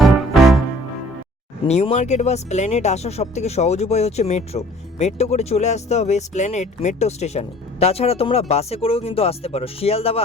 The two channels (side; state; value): both; normal; correlation 0.52